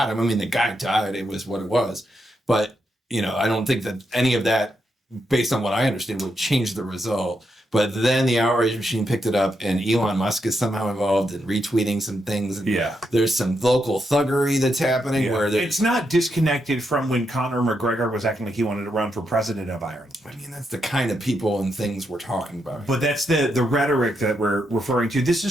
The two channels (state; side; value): normal; both; correlation 0.82